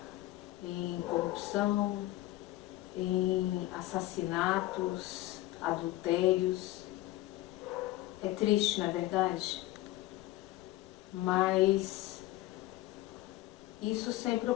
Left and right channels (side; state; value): right; quieter; 16.6 dB